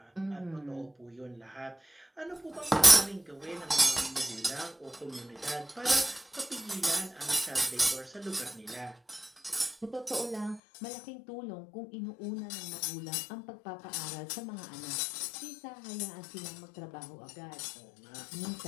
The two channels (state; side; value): drops out; right; at 10.6 s